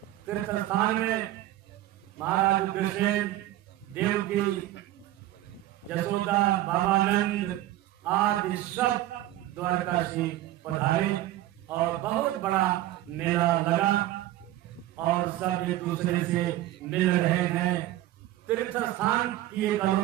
तीर्थ स्थान में महाराज उग्रसेन, देवकी, यशोदा, बाबानंद आदि सब द्वारका से पधारे और बहुत बड़ा मेला लगा और सब एक दूसरे से मिल रहे हैं। तीर्थ स्थान की एक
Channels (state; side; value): quieter; left; 14.8 dB